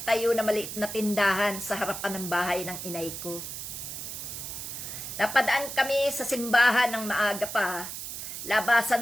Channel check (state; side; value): noise; right; hiss, 7 dB below the sound